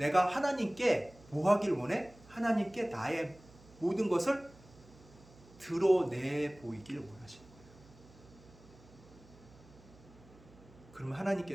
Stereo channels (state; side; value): noise; right; hum, 23 dB below the sound